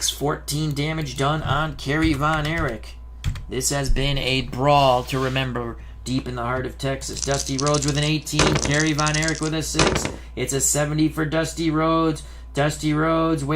14 damage done on Kerry Von Erich. This has been a brawl to remember deep in the heart of Texas. Dusty Rhodes with an 18. Kerry Von Erich with a 6. It's a 70 for Dusty Rhodes. Dusty Rhodes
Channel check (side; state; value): both; identical; correlation 1.00